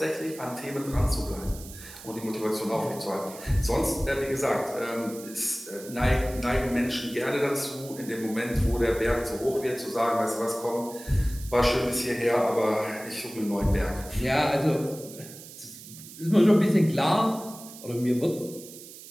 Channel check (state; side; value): noise; right; hiss, 16 dB below the sound